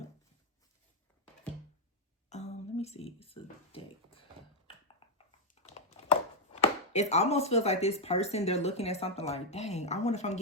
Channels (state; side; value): normal; both; correlation -0.01